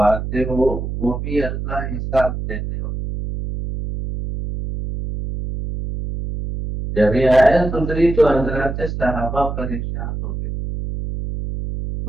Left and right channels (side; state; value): right; noise; hum, 5 dB below the sound